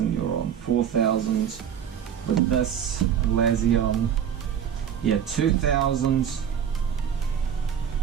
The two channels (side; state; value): left; quieter; 8.6 dB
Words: you're on 4,000 with this, Lazion. Yeah, 2,000.